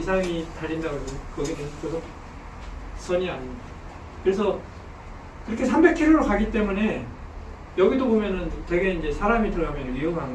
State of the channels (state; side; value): identical; both; correlation 1.00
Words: 달린다고 해도 거기는 고속선이 아닙니다. 그래서 그렇게 300km로 가기 때문에 여기도 보면은 되게 이제 사람이 들어가면